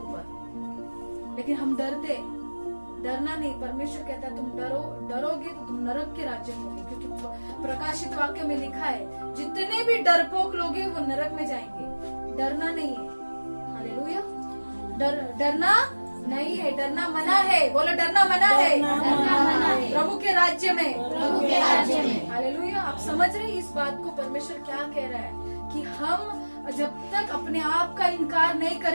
लेकिन हम डरते। डरना नहीं, परमेश्वर कहता है तुम डरोगे तो तुम नरक के राज्य में होगे, क्योंकि प्रकाशित वाक्य में लिखा है जितने भी डरपोक लोग हैं वो नरक में जाएंगे। डरना नहीं है। हालेलुया। डरना नहीं है, डरना मना है। बोलो डरना मना है, डरना मना है। प्रभु के राज्य में, प्रभु के राज्य में। हालेलुया। आप समझ रहे हैं इस बात को? परमेश्वर क्या कह रहा है कि हम जब तक अपने आप का इनकार नहीं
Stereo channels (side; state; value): both; inverted; correlation -1.00